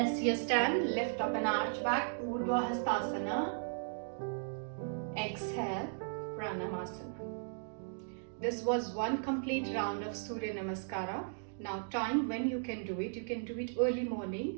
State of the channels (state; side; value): silent; left; digital silence